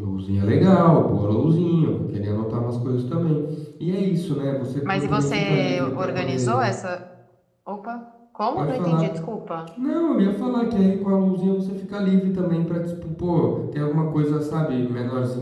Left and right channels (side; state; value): both; identical; correlation 1.00